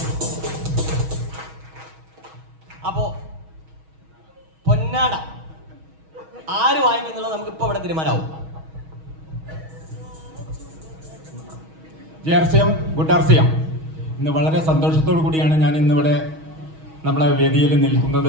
അപ്പോ പൊന്നാട ആര് വാങ്ങിക്കുന്നുള്ളത് നമുക്ക് ഇപ്പൊ ഇവിടെ തീരുമാനമാവും. JRCM, good RCM. ഇന്ന് വളരെ സന്തോഷത്തോടു കൂടിയാണ് ഞാൻ ഇന്നിവിടെ നമ്മളെ വേദിയിൽ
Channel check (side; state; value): left; late; 6.3 ms